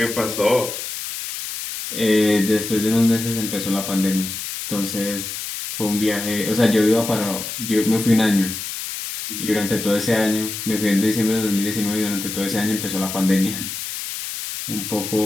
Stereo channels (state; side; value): noise; left; hiss, 6 dB below the sound